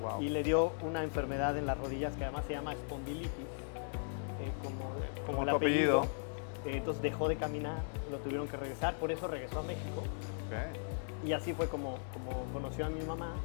y le dio una enfermedad en las rodillas que además se llama espondilitis, como el apellido. Entonces dejó de caminar, lo tuvieron que regresar, por eso regresó a México. Y así fue como conoció a mi mamá,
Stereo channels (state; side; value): silent; right; digital silence